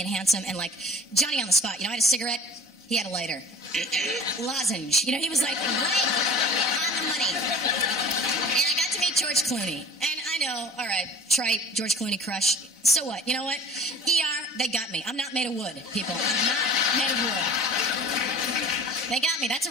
and handsome, and like Johnny on the spot. You know, I had a cigarette, he had a lighter. Lozenge. You know, he was like right on the money. And I got to meet George Clooney. And I know, all right, trite, George Clooney crush. So what? You know what? ER, they got me. I'm not made of wood, people. I'm not made of wood. They got me. That's a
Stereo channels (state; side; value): normal; both; correlation 0.43